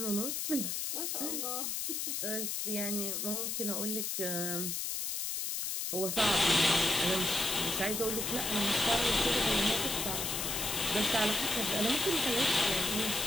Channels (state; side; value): noise; left; hiss, 2 dB below the sound